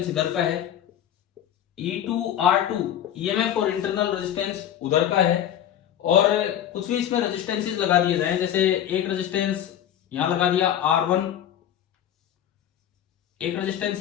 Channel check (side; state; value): right; quieter; 10.6 dB